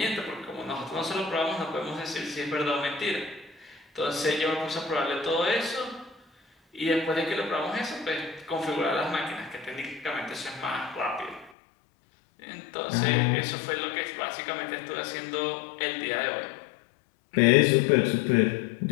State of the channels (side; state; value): right; drops out; at 11.5 s